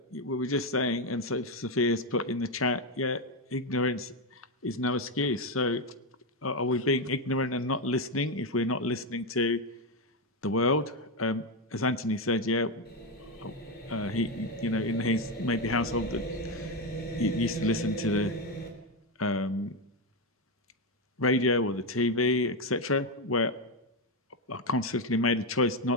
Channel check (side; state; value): both; normal; correlation 0.08